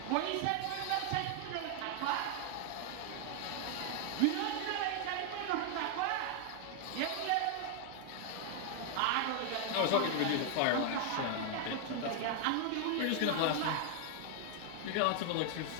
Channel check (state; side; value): different; both; correlation 0.00